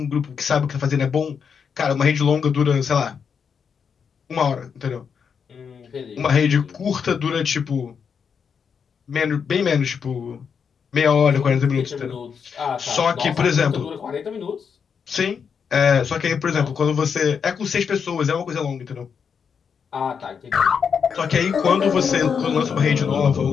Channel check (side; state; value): right; quieter; 6.6 dB